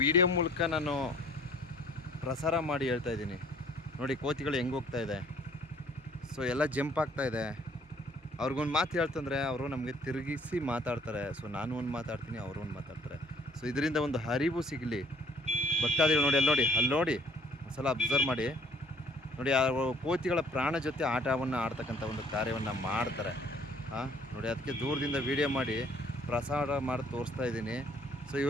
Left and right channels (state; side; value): normal; both; correlation 0.58